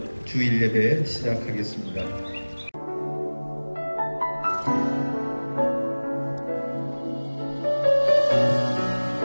주일 예배 시작하겠습니다.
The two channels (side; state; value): both; inverted; correlation -1.00